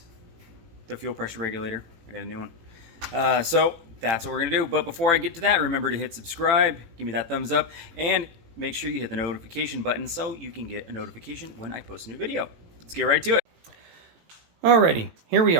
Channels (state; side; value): late; left; 18 ms